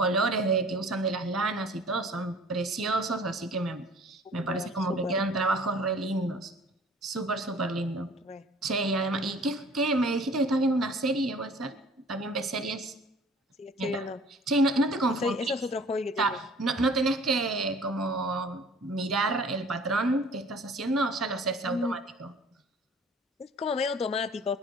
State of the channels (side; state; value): both; normal; correlation 0.49